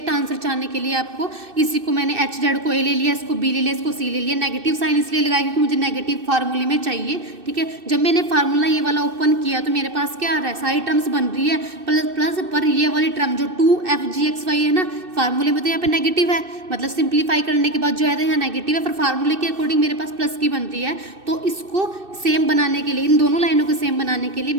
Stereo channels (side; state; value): left; late; 2.6 ms